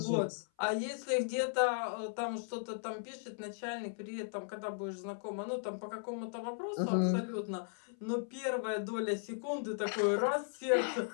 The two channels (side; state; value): right; silent; 53 dB below the other